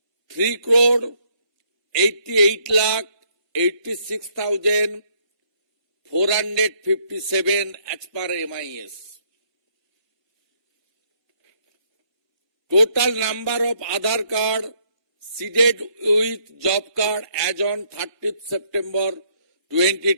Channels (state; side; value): late; left; 1.4 ms